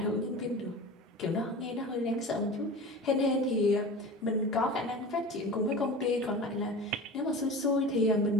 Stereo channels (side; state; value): both; normal; correlation 0.34